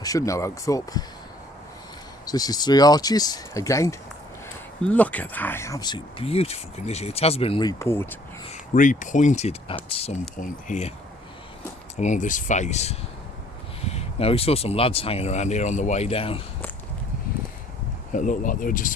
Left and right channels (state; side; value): normal; both; correlation 0.59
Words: should know Oakthorpe. So this is 3 arches again. Look at that, absolute beautiful condition. It has been repointed at some point here along this face. Now we saw some lads hanging around here on the way down. It looked like they were just